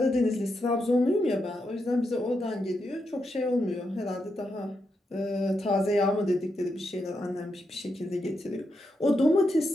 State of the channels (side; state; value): both; normal; correlation 0.84